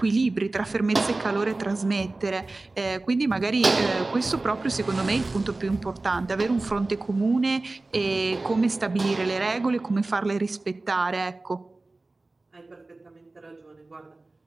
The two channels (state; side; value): quieter; left; 3.2 dB